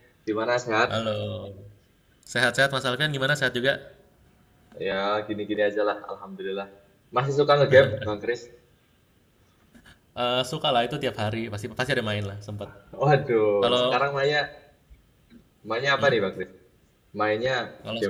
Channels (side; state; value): both; identical; correlation 1.00